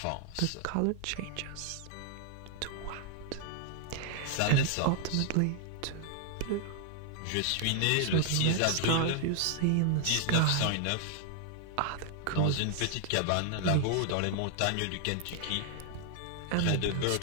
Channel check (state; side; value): different; both; correlation 0.00